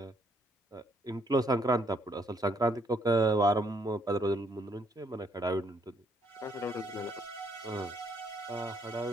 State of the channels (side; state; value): both; normal; correlation 0.70